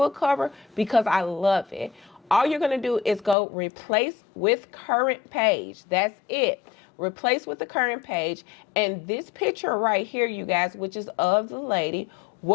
cover, because I love it. All you're going to do is go replace with current page. That's it. Replace with the current page, and this picture right here, you guys, which is of the lady,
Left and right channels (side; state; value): right; drops out; at 3.4 s